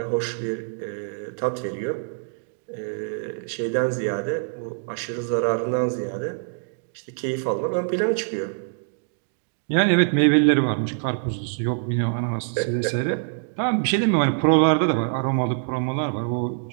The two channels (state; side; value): silent; left; digital silence